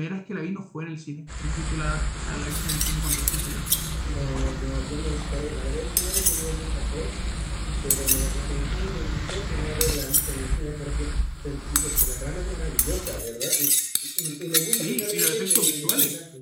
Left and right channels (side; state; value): both; identical; correlation 1.00